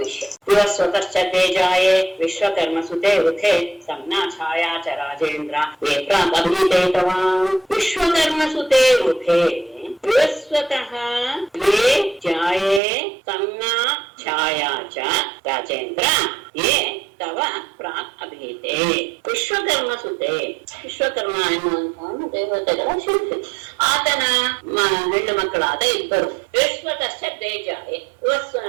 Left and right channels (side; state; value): left; drops out; at 12.8 s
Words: ಸ್ವತಶ್ಚ ತೇಜಾಯೇ ವಿಶ್ವಕರ್ಮ ಸುತೆ ವೃಥೆ ಸಂಜ್ಞಾ ಛಾಯಾ ಚ ರಾಜೇಂದ್ರ ವಿಶ್ವಕರ್ಮ ಸುತೆ ವೃಥೆ ಸ್ವತಃ ಯೇ ಜಾಯೇ ಸಂಜ್ಞಾ ಛಾಯಾ ಚ ರಾಜೇಂದ್ರ ಯೇ ತವ ಪ್ರಾಕ್ ಅಭೀತೆ. ವಿಶ್ವಕರ್ಮ ಸುತೆ, ವಿಶ್ವಕರ್ಮ ಎನ್ನುವಂತಹ ದೇವತೆಗಳ ಶಿಲ್ಪಿ, ಆತನ ಹೆಣ್ಣು ಮಕ್ಕಳಾದ 2 ವಿಶ್ವತಶ್ಚ ತೇಜಾಯೇ